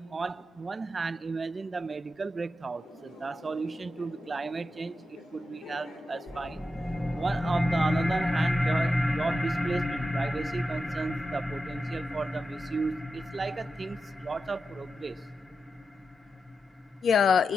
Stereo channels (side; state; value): both; normal; correlation 0.89